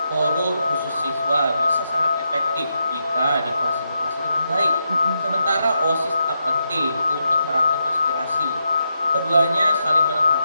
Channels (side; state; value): both; inverted; correlation -0.83